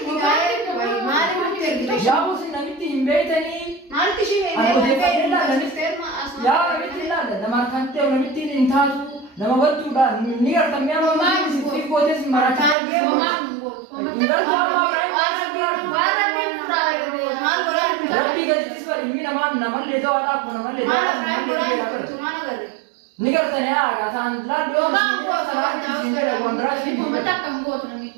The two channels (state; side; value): drops out; left; at 12.8 s